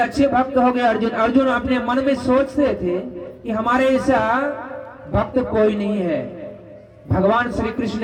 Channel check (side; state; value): both; identical; correlation 1.00